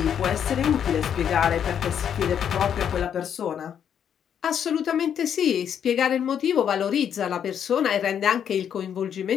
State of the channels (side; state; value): right; quieter; 8.6 dB